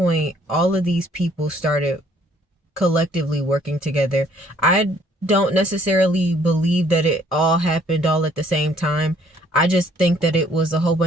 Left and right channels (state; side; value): normal; both; correlation 0.62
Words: all of these people started collectively working together. I don't necessarily believe that it all happened all at the same time. I just think that it was a whole